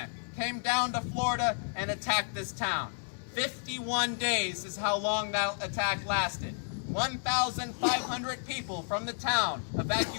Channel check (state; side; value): silent; right; digital silence